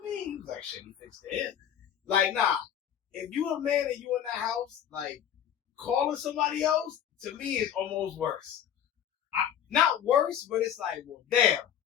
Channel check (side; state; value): right; quieter; 9.6 dB